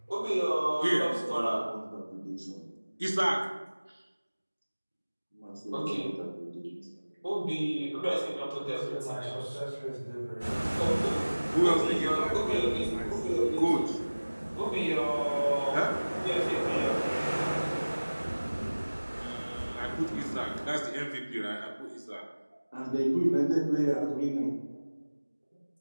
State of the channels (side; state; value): both; inverted; correlation -1.00